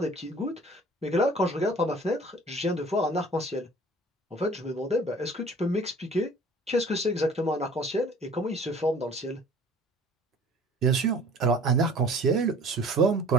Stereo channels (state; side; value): normal; both; correlation 0.49